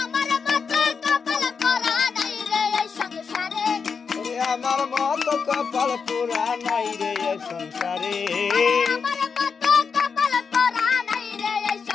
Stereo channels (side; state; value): right; quieter; 5.7 dB